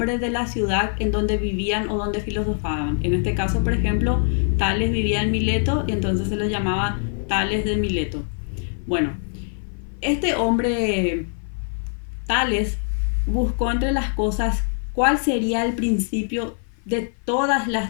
de la ciudad en donde vivían o donde filosofaban. En este caso, por ejemplo, Tales vivía en Mileto y entonces se le llamaba Tales de Mileto. Bueno, este hombre Tales buscó entre las cosas cuál sería el principio de todas las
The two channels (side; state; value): right; silent; 56 dB below the other